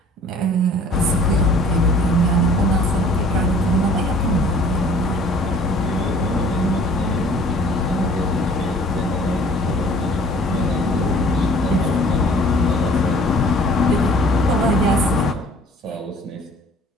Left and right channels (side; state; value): both; normal; correlation 0.52